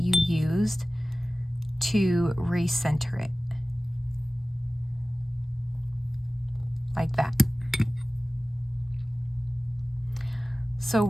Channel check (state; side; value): normal; both; correlation 0.97